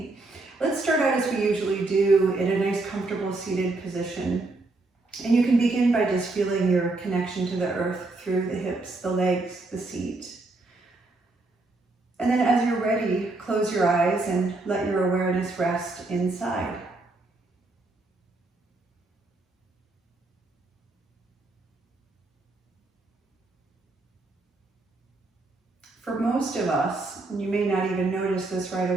Let's start out as we usually do in a nice comfortable seated position. And you can begin by just feeling your connection to the earth through the hips, the legs, the seat. And then as you're ready, close your eyes and let your awareness rest inside. For most of us, and you may not even notice this right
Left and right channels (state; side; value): quieter; left; 3.2 dB